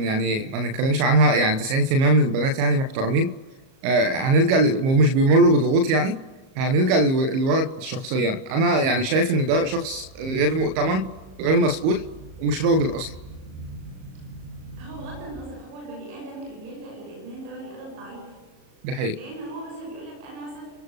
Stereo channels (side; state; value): left; late; 38 ms